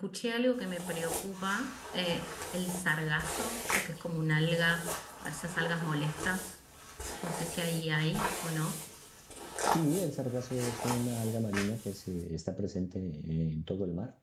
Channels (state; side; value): identical; both; correlation 1.00